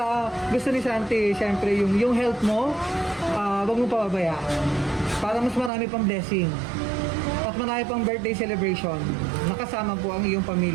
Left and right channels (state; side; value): drops out; left; at 5.7 s